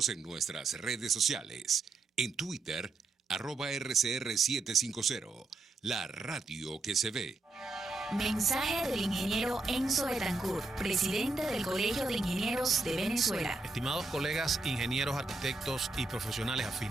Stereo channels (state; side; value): quieter; left; 3.5 dB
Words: en nuestras redes sociales. En Twitter, @RCR750, la radio que se ve. Mensaje del ingeniero Enzo Betancourt, presidente del Colegio de Ingenieros de Venezuela. Estimados colegas, ingenieros, arquitectos y profesionales